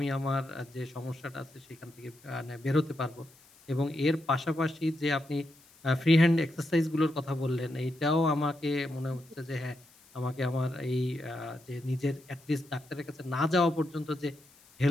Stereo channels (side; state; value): left; noise; hiss, 27 dB below the sound